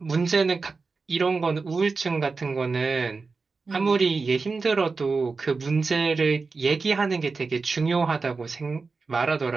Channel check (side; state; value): left; quieter; 4.3 dB